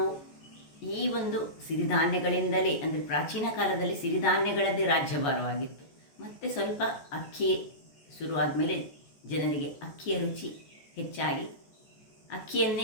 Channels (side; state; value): right; late; 14 ms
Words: ಈ ಒಂದು ಸಿರಿಧಾನ್ಯಗಳಿಂದಲೇ, ಅಂದರೆ ಪ್ರಾಚೀನ ಕಾಲದಲ್ಲಿ ಸಿರಿಧಾನ್ಯಗಳದ್ದೇ ರಾಜ್ಯಭಾರವಾಗಿತ್ತು. ಮತ್ತು ಸ್ವಲ್ಪ ಅಕ್ಕಿ ಶುರುವಾದ ಮೇಲೆ ಜನರಿಗೆ ಅಕ್ಕಿಯ ರುಚಿ ಹೆಚ್ಚಾಗಿ